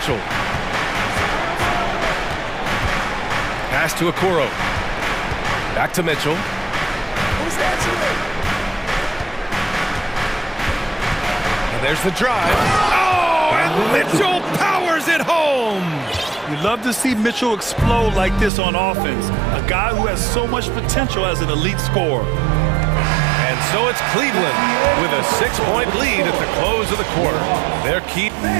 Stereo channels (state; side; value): drops out; left; at 18.5 s